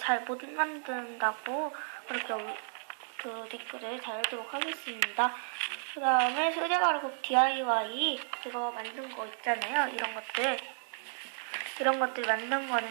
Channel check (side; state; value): left; silent; digital silence